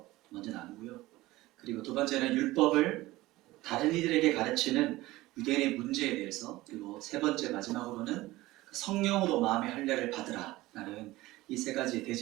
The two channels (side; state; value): left; quieter; 18.4 dB